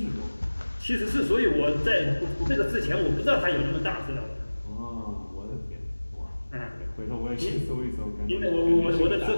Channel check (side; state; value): both; inverted; correlation -1.00